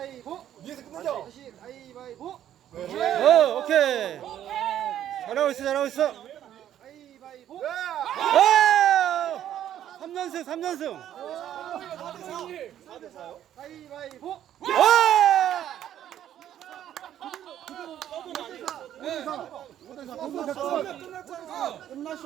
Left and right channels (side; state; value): left; quieter; 11.1 dB